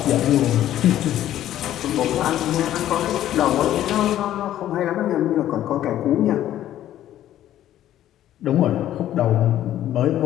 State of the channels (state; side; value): quieter; right; 12.4 dB